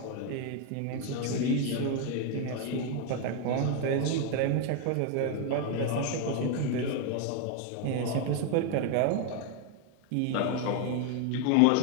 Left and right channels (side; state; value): both; different; correlation 0.01